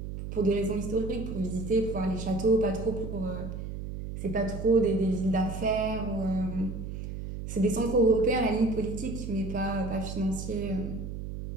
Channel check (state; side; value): noise; right; hum, 7 dB below the sound